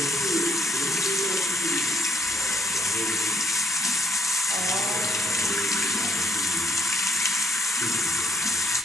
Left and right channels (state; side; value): normal; both; correlation 0.69